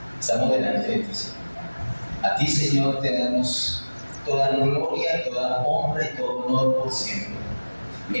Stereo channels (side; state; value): both; inverted; correlation -1.00